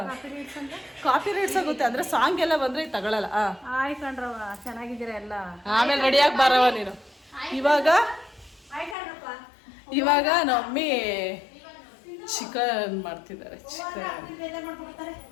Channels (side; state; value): right; drops out; at 9.0 s